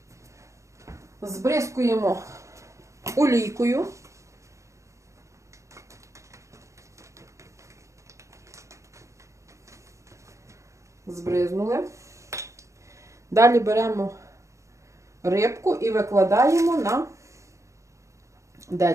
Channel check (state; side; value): late; left; 0.15 ms